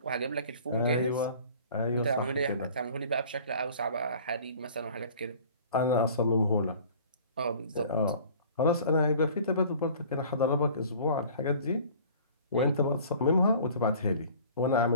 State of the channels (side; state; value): both; inverted; correlation -0.48